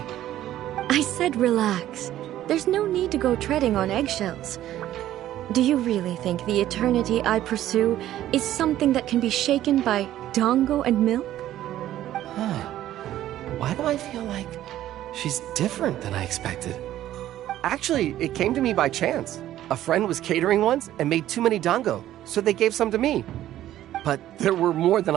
I said relax. There's no need to go treading on eggshells. Do you really think the eternity I pursue is something that can be shaken by dango and milk? Why do I feel like she's different than I expected? Actually, it came to me by chance. A friend was catering once and made too many dango, so they gave some to me. But there were more than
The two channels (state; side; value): quieter; left; 13.1 dB